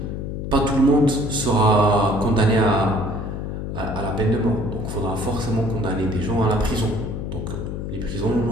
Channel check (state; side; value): noise; left; hum, 5 dB below the sound